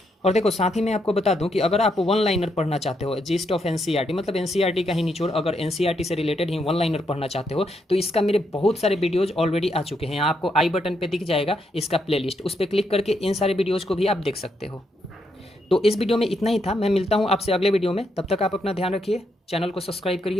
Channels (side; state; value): both; normal; correlation 0.78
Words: और देखो साथ ही मैं आपको बता दूं कि अगर आप वन लाइनर पढ़ना चाहते हो, जीस्ट ऑफ एनसीईआरटी, मतलब एनसीईआरटी का ही निचोड़, अगर एनसीईआरटी से रिलेटेड ही वन लाइनर पढ़ना चाहते हो तो इसका मेरे बहुत सारे वीडियोज ऑलरेडी आ चुके हैं। यहाँ आपको आई बटन पे दिख जाएगा इसका प्लेलिस्ट, उस पर क्लिक करके इन सारे वीडियोज़ को भी आप देख सकते हो। तो इस वीडियो में इतना ही था, मैं मिलता हूँ आपसे अगले वीडियो में, तब तक आप अपना ध्यान रखिए, चैनल को सब्सक्राइब